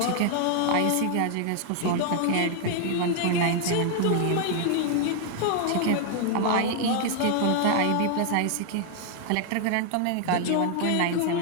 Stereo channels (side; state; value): both; different; correlation 0.00